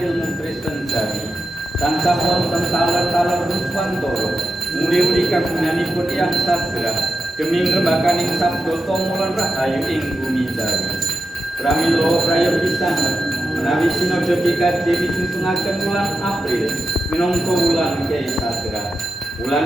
Kristen jari. Tansah wonten taler-taler Ruswantoro muri-uri kagunganipun Yang Sadra demi ngrembakaning sabda tomolan rahayu ing bumi jari. Pramila praya pisan menawi sinodha PKJ disunsungaken wulan April minangka wulan Kyai Sadra.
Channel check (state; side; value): normal; both; correlation 0.90